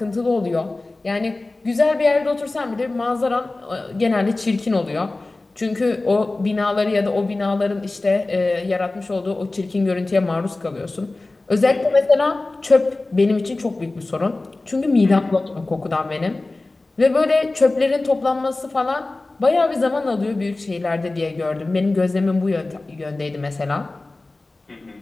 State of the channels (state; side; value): quieter; right; 3.1 dB